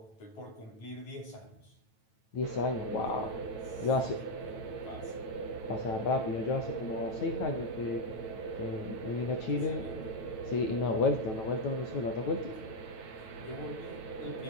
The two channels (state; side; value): late; right; 9.1 ms